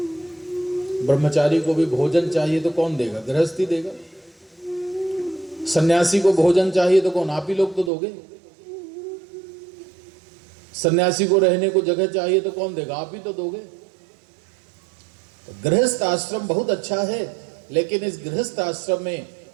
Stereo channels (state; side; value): drops out; left; at 7.9 s